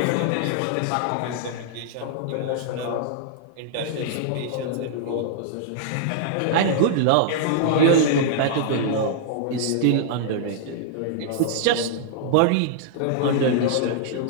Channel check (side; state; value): both; different; correlation -0.01